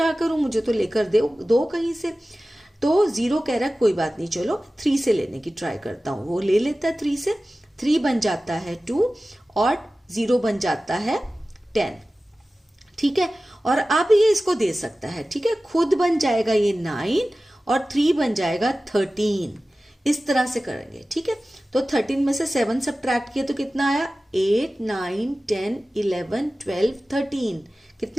करूं, मुझे तो लेकर दो कहीं से। तो 0 कह रहा है, कोई बात नहीं, चलो 3 से लेने की ट्राई करता हूं। वो ले लेता है 3 से, 3 बन जाता है 2 और 0 बन जाता है 10। ठीक है, और अब ये इसको दे सकता है। ठीक है, खुद बन जाएगा ये 9 और 3 बन जाएगा 13। इस तरह से करेंगे। ठीक है, तो 13 में से 7 सब्ट्रैक्ट किया तो कितना आया? 8, 9, 10, 11, 12, 13।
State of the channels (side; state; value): both; normal; correlation 0.96